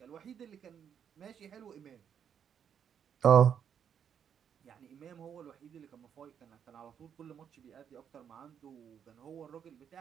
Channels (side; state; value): left; quieter; 8.2 dB